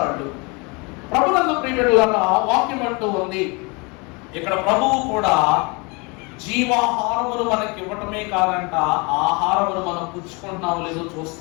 వాళ్ళు. ప్రభునందు ప్రియబిడ్డలారా వాక్యం అంటూ ఉంది, ఇక్కడ ప్రభువు కూడా జీవాహారమును మనకి ఇవ్వటమే కాదంట, ఆహారమును మనం పుచ్చుకుంటున్నాము లేదో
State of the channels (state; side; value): quieter; right; 29.0 dB